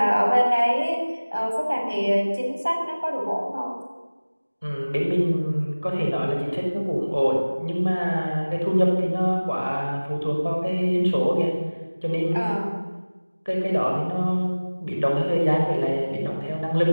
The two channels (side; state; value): both; inverted; correlation -1.00